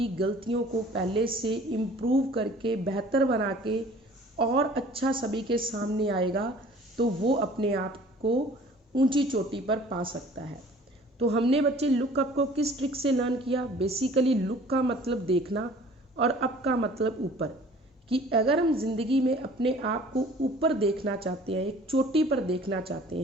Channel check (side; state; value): both; normal; correlation 0.50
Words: गलतियों को पहले से इम्प्रूव करके बेहतर बना के और अच्छा सभी के सामने आएगा तो वो अपने आप को ऊंची चोटी पर पा सकता है। तो हमने बच्चे लुक अप को किस ट्रिक से लर्न किया, बेसिकली लुक का मतलब देखना और अप का मतलब ऊपर। कि अगर हम जिंदगी में अपने आप को ऊपर देखना चाहते हैं, एक चोटी पर देखना चाहते